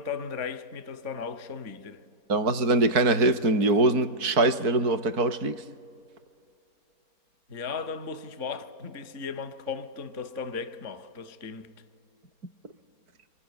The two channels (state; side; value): late; left; 4.6 ms